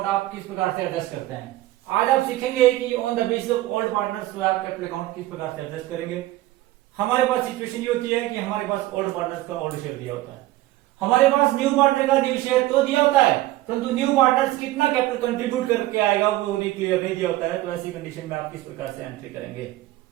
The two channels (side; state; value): left; quieter; 16.6 dB